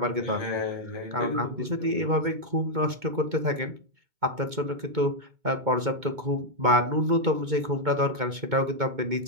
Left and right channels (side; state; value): left; late; 2.2 ms